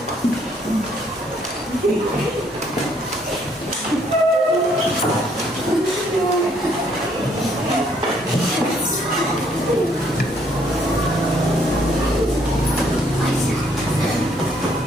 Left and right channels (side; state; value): both; normal; correlation 0.67